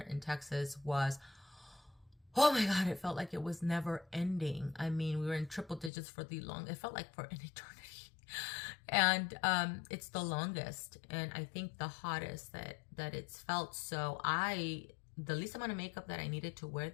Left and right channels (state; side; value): drops out; right; at 5.9 s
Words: Texas was, oh my God, it felt like it was never ending. I mean, we were in triple digits for it felt like for an eternity. And it's the longest, and I think the hottest that it's felt. So the least amount of makeup that I needed to wear,